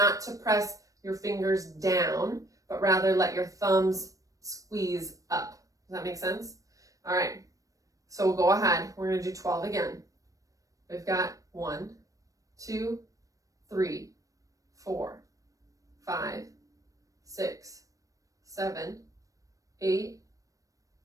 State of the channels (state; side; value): late; left; 0.16 ms